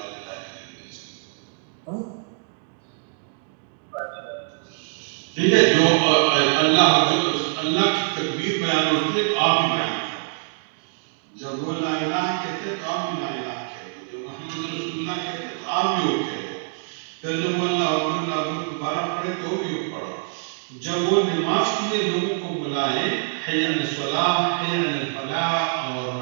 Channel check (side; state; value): left; silent; digital silence